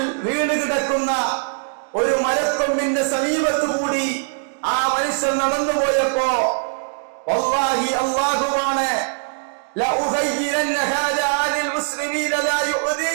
വീണ് കിടക്കുന്ന ഒരു മരക്കൊമ്പിന്റെ സമീപത്തുകൂടി ആ മനുഷ്യൻ നടന്നുപോയപ്പോ, വല്ലാഹി അല്ലാഹുവാണ്,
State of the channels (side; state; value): left; silent; digital silence